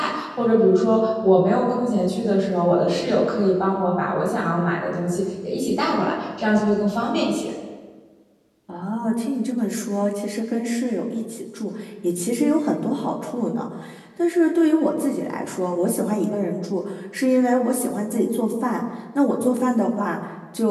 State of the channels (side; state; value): both; identical; correlation 1.00